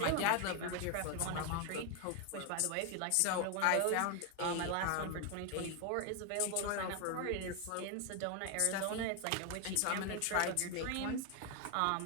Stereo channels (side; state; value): both; different; correlation 0.01